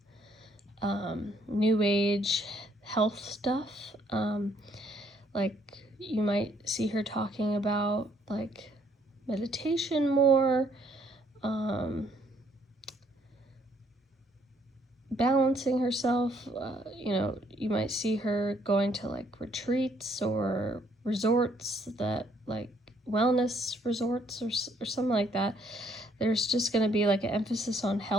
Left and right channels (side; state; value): both; normal; correlation 0.67